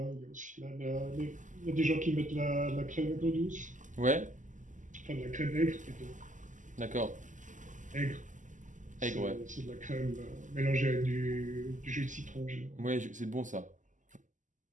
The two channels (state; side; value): late; left; 0.37 ms